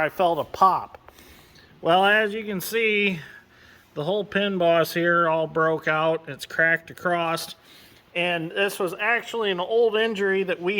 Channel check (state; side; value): identical; both; correlation 1.00